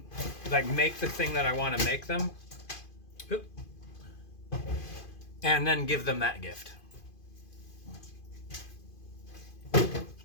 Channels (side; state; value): right; late; 2.5 ms